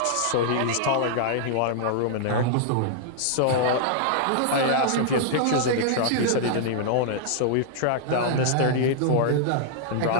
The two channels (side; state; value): both; different; correlation -0.01